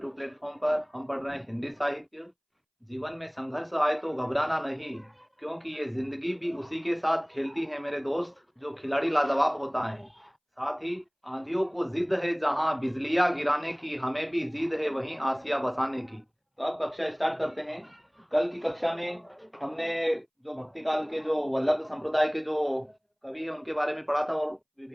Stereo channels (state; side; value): identical; both; correlation 1.00